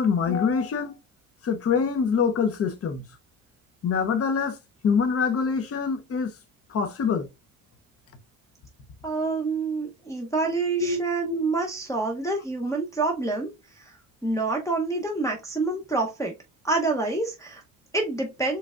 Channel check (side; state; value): both; normal; correlation 0.34